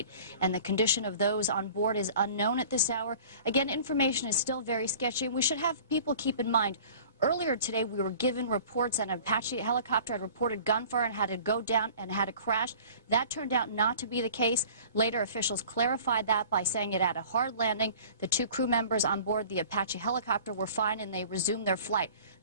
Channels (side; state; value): both; inverted; correlation -0.45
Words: and the condition of those on board is unknown at this hour. Again, information is still very sketchy, and we should have people keep in mind, earlier today, we were given reports that an Apache helicopter had reported gunfire and had to go down and had to crash. That turned out not to be the case. Later, officials clarified that by saying it had a hard landing. The two crew members on board the Apache helicopter were fine and they resumed their flight.